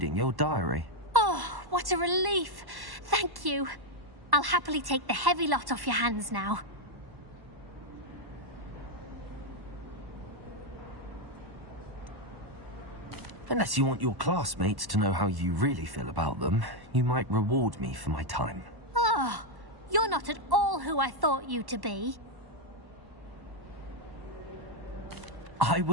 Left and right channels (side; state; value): left; late; 1.1 ms